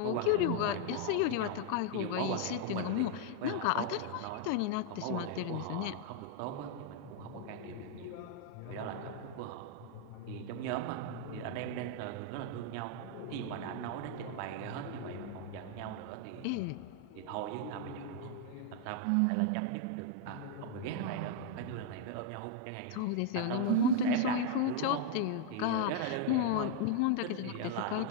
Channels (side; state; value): both; different; correlation 0.00